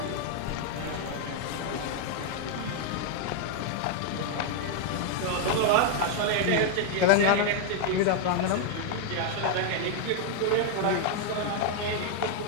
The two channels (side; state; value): both; different; correlation 0.00